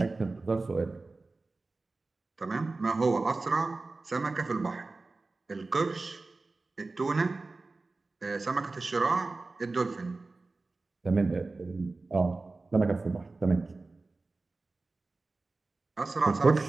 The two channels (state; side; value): quieter; left; 3.5 dB